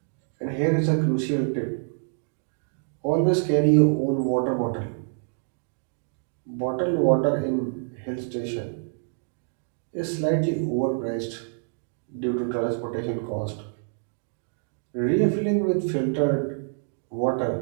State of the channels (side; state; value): left; silent; digital silence